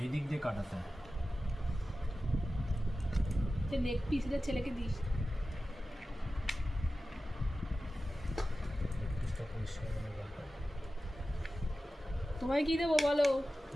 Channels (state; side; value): normal; both; correlation 0.94